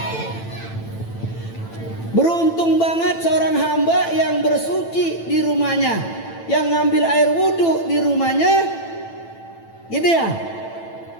Beruntung banget seorang hamba yang bersuci di rumahnya, yang ngambil air wudhu di rumahnya, gitu ya.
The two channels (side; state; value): right; late; 9.0 ms